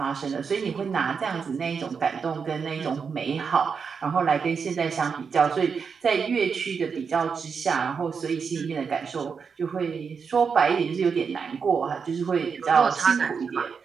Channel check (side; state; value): left; quieter; 5.9 dB